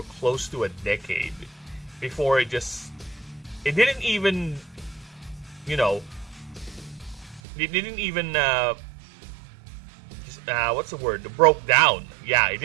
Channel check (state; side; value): drops out; left; at 7.4 s